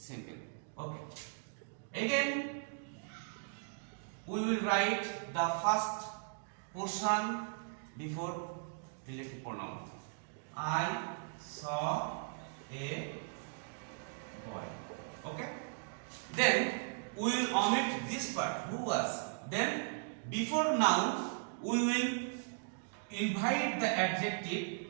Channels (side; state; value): left; silent; digital silence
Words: Okay. Again, we will write the first portion before relative pronoun. I saw a boy. Okay. Then we will omit this part. Who was? Then before noun we will invite the